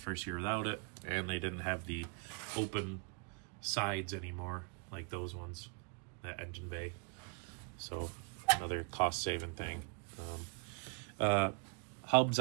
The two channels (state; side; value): quieter; left; 34.5 dB